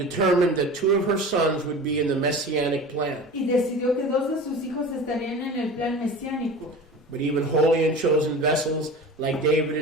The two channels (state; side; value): normal; both; correlation 0.35